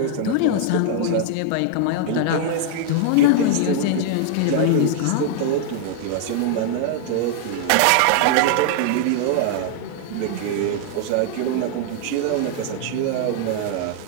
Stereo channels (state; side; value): different; both; correlation 0.00